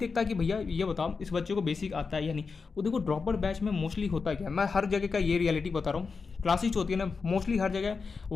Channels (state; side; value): quieter; right; 4.9 dB